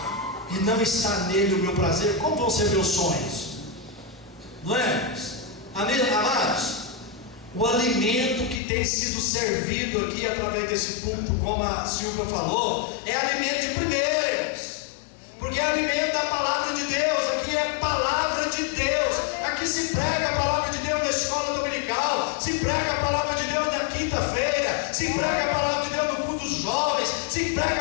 e não está nele o meu prazer, como vão ser meus sonhos? Não é? Amados, o alimento que tem sido servido aqui através desse púlpito, como a Silvia falou, é alimento de primeiros, porque é alimento da palavra de Deus. Aqui é palavra de Deus, aqui se prega a palavra de Deus na escola dominical, se prega a palavra de Deus na quinta-feira, se prega a palavra de Deus no culto dos jovens, se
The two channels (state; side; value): drops out; right; at 8.6 s